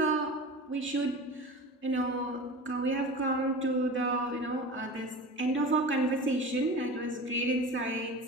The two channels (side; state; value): both; normal; correlation 0.34